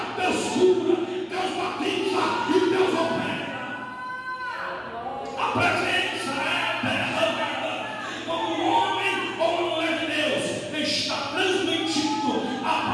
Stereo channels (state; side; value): identical; both; correlation 1.00